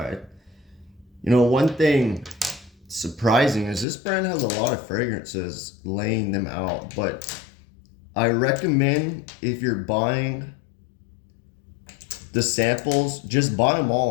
One thing surprising is this brand has a lot of fragrances laying them out, but I recommend if you're buying the samples, just buy them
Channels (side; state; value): right; drops out; at 3.9 s